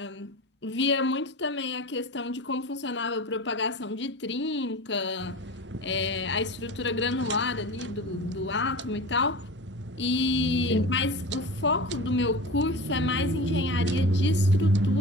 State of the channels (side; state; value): both; normal; correlation 0.32